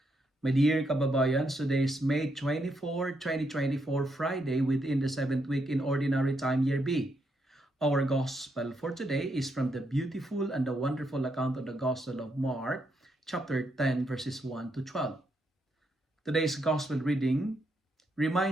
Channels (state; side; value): normal; both; correlation 0.79